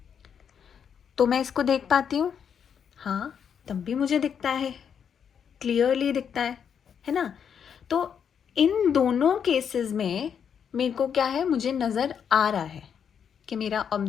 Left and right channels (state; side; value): quieter; right; 7.6 dB